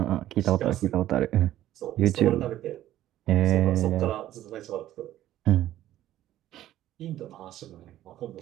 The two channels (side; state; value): left; quieter; 13.4 dB